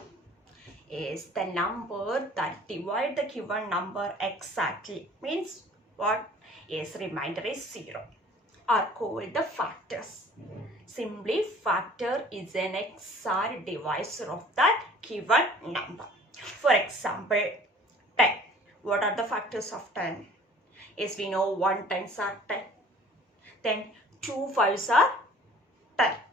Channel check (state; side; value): normal; both; correlation 0.51